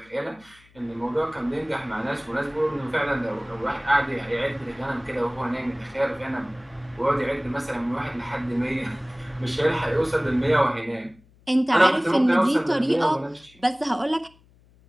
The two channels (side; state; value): left; noise; hum, 29 dB below the sound